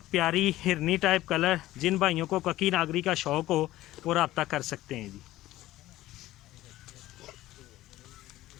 प्यारी हिरनी टाइप कलर। जिन भाइयों को कक्की नागरी का शौक़ हो वो रब्ता कर सकते हैं जी।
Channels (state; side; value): quieter; right; 15.9 dB